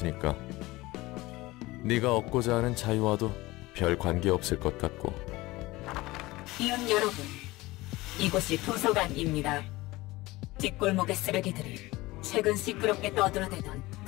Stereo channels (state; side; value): quieter; right; 19.9 dB